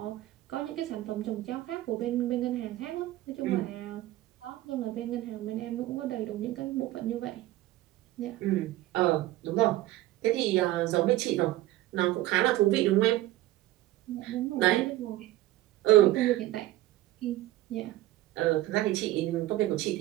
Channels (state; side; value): quieter; left; 15.8 dB